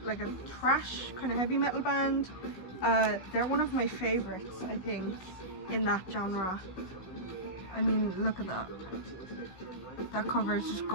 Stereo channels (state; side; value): late; right; 16 ms